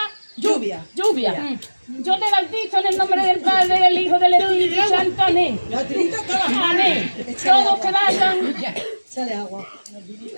Lluvia. Yo te bautizo en el nombre del Padre, del Hijo, del Espíritu Santo. Amén. Amén. Todos que vayan. Sale agua.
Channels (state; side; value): inverted; both; correlation -1.00